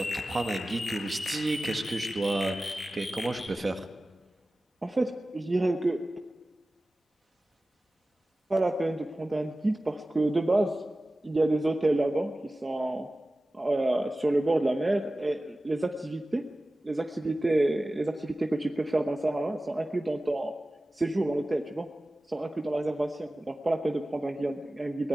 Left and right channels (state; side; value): normal; both; correlation 0.96